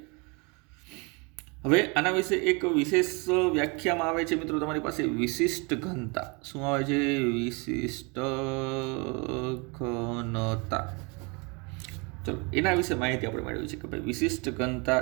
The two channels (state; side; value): quieter; left; 30.7 dB